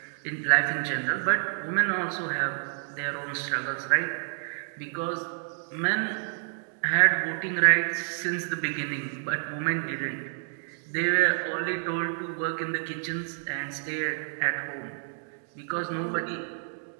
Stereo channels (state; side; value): silent; left; digital silence